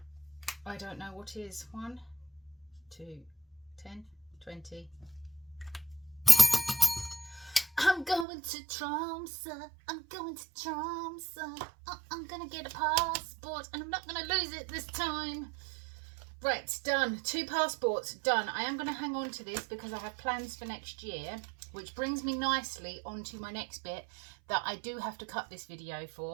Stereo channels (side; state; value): left; drops out; at 8.2 s